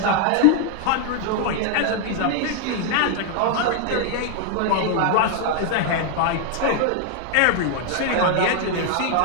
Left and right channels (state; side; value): different; both; correlation 0.00